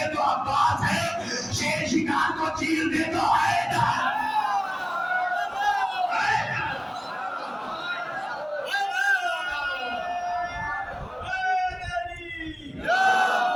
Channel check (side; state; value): both; identical; correlation 1.00